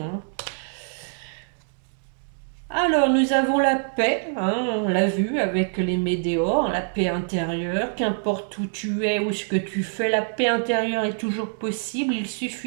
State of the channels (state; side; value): silent; left; 62 dB below the other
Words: hein. Alors, nous avons la paix, hein, on l'a vu avec les météores, la paix intérieure, qu'importe où tu es ou ce que tu fais, la paix intérieure est toujours possible, il